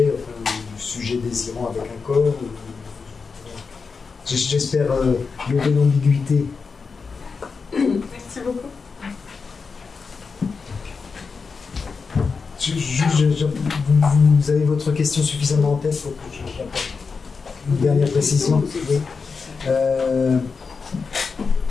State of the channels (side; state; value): right; quieter; 5.0 dB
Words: enfin, du sujet désirant avec un corps. J'espère lever l'ambiguïté. Merci beaucoup. Vous avez votre question suffisamment en tête pour que j'apporte une dernière précision. Oui.